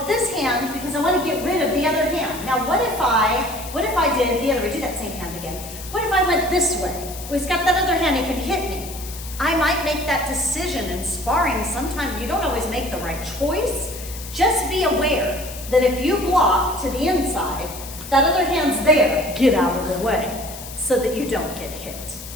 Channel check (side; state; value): left; noise; hiss, 13 dB below the sound